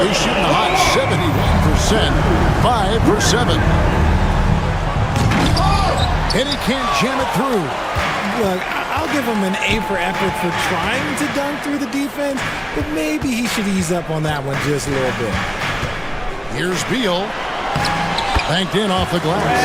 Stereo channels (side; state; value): both; identical; correlation 1.00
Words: He's shooting a hot 71%, 5 for 7. And he can't jam it through. Look, I'll give him an A for effort for trying to dunk through the defense, but maybe he should ease up on that one just a little bit. Here's Beal. Banked in off the